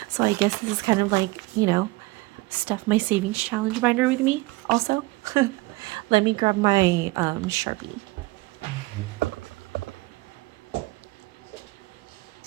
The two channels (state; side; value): quieter; left; 22.0 dB